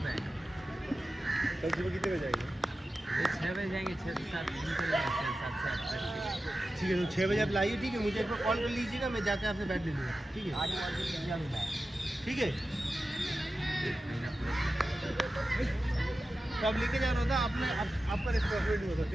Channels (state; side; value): normal; both; correlation 0.93